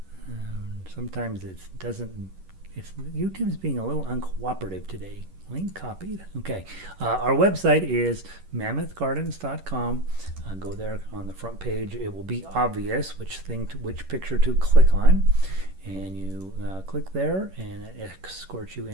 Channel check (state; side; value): late; left; 11 ms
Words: Sometimes YouTube's being a little uncooperative today. Link copied. Okay. Our website is mammothgardens.com. Go there on the front page. It will be obvious which picture to click on. And you click there, and it escorts you